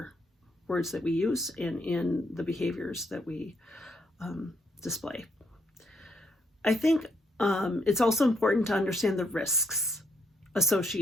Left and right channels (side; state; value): both; normal; correlation 0.74